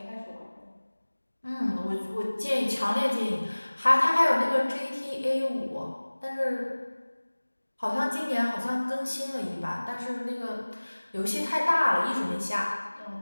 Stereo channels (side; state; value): both; inverted; correlation -1.00